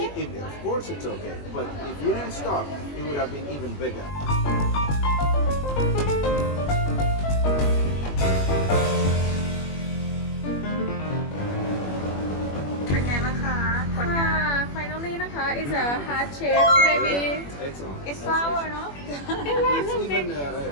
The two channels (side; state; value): right; late; 21 ms